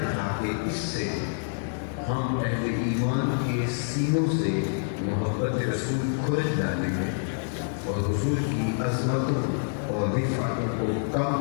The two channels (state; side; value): silent; right; digital silence